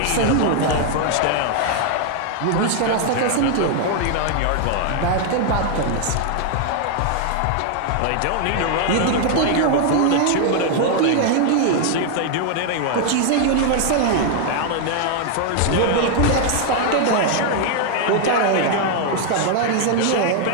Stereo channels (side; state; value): both; different; correlation 0.00